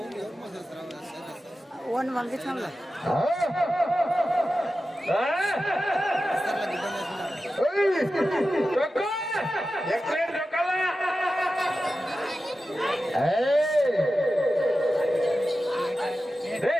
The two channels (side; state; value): both; normal; correlation 0.93